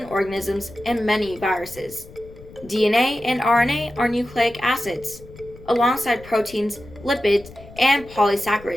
organisms and many viruses. DNA and RNA are nucleic acids, alongside proteins, lipids, and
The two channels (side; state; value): left; noise; rumble, 19 dB below the sound